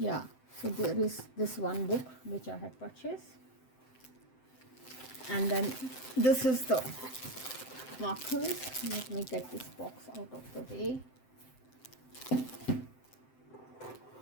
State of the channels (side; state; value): right; late; 7.7 ms